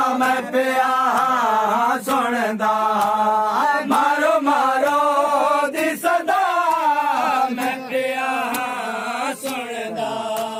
मैं पिया सुनदा मारो मारो दी सदा मैं पिया सुनदा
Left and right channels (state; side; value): identical; both; correlation 1.00